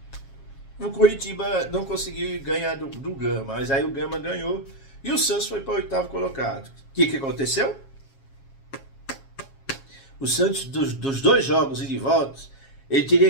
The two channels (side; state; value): right; late; 7.3 ms